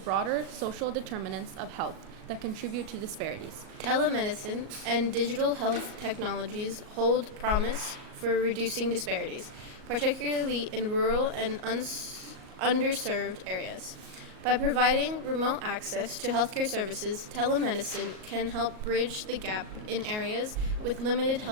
social determinants of health that contribute to disparities. Telemedicine and digital health technologies hold promise for reducing disparities, particularly in rural and underserved areas. By providing remote access to healthcare services, telemedicine can help bridge the gap in areas with limited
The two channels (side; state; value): left; late; 38 ms